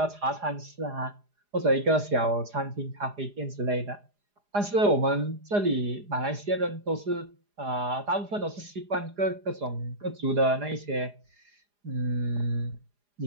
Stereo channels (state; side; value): late; left; 4.9 ms